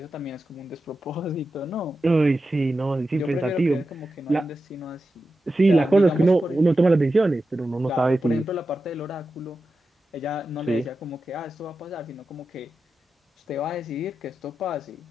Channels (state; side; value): normal; both; correlation 0.91